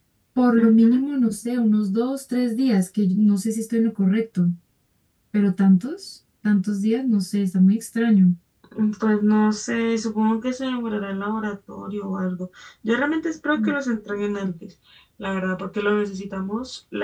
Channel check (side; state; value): both; identical; correlation 1.00